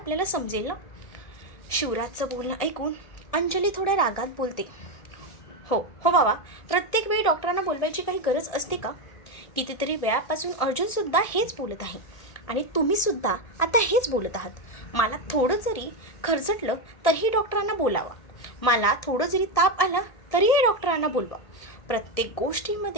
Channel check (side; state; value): right; late; 1.6 ms